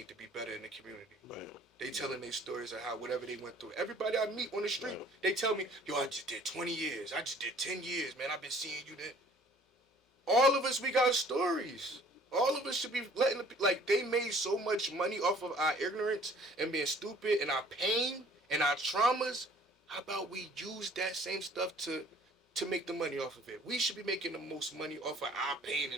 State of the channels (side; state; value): both; normal; correlation 0.54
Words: to be better in the community. Right. They telling their stories of how whatever they went through. Everybody I meet on the street, Right. they tell me, yo, I just did 20 years. I just did 10 years, man. I've been seeing you there. All of us, we got stories. All of us should be letting like they made so much money off of our ignorance and being stupid and our pain and our traumas. How about we use that same stuff to make the money off of it? We should be making the most money off of our pain